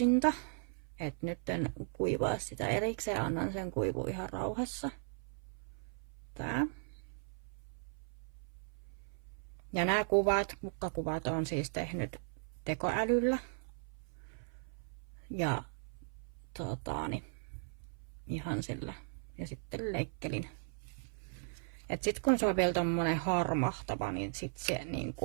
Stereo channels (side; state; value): left; silent; 53 dB below the other